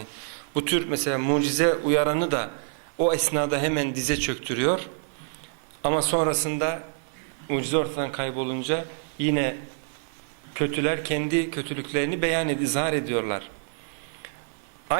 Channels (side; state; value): left; silent; 60 dB below the other